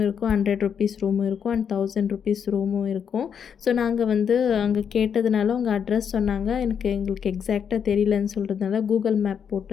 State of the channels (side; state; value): right; quieter; 7.5 dB